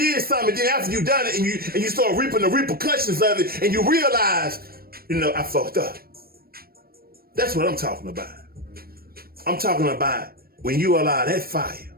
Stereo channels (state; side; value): late; left; 0.44 ms